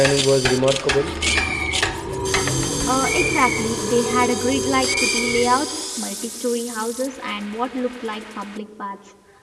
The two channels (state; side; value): identical; both; correlation 1.00